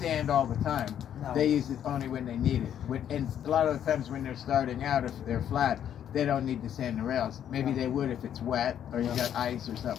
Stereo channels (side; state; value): right; quieter; 9.8 dB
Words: all the time. No. They use it only when they need it. And a lot of the times when they're starting out, if they're flat, they don't need to sand the rails. Maybe they would if it's wet or you got ice or